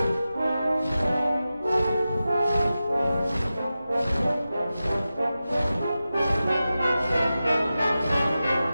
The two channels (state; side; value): inverted; both; correlation -0.94